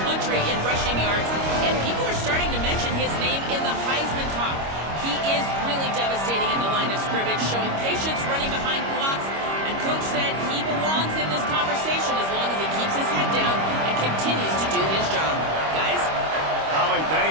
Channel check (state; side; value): late; left; 25 ms